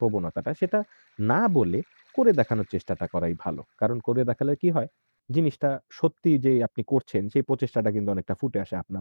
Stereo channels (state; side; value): inverted; both; correlation -1.00